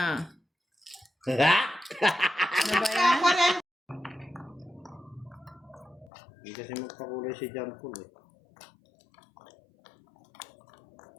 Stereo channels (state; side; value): drops out; right; at 6.1 s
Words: Ha? Ano ba yan? Ako rin. Hindi kasi magpakulay si John Paul eh.